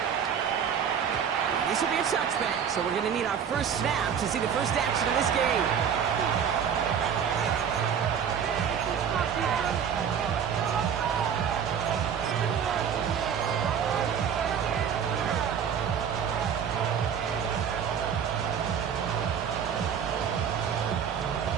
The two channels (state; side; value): quieter; left; 7.8 dB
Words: This will be a touchback, so we're going to need our first snap to see the first action of this game.